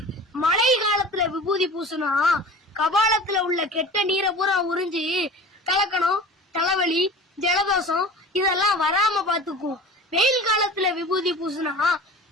மழை காலத்துல விபூதி பூசுனா கபாலத்துல உள்ள கெட்ட நீரை பூரா உறிஞ்சி கலக்கணும், தலைவலி, ஜலதோஷம் இதெல்லாம் வராம பாத்துக்கும். வெயில் காலத்துல விபூதி பூசுனா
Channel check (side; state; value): both; normal; correlation 0.38